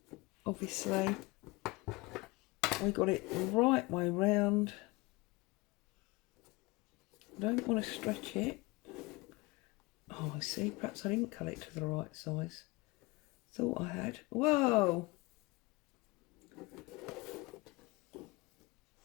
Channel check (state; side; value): quieter; right; 23.1 dB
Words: obviously we got it the right way round. Don't want to stretch it. Oh, I see, perhaps I didn't cut it to the right size. Thought I had. Whoa!